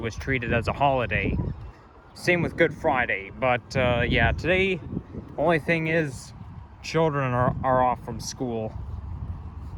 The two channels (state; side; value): identical; both; correlation 1.00